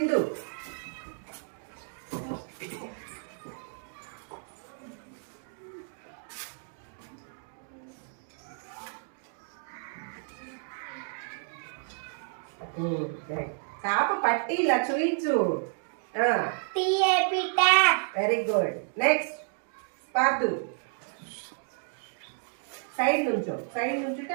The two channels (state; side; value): silent; left; 57 dB below the other